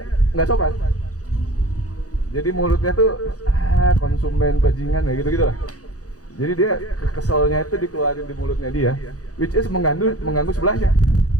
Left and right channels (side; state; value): right; late; 0.67 ms